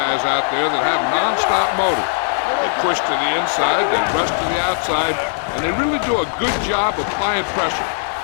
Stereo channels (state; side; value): silent; right; digital silence